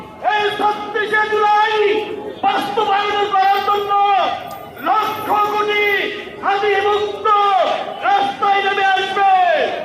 এই ৩৬শে জুলাই বাস্তবায়ন করার জন্য লক্ষ কোটি হানি মুক্ত রাস্তায় নেমে আসবে।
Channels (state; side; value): identical; both; correlation 1.00